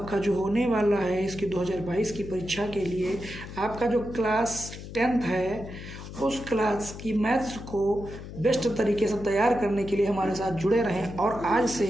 जो होने वाला है इसकी 2022 की परीक्षा के लिए, आपका जो क्लास 10th है उस क्लास की मैथ्स को बेस्ट तरीके से तैयार करने के लिए हमारे साथ जुड़े रहें। और आज से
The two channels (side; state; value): left; noise; hum, 12 dB below the sound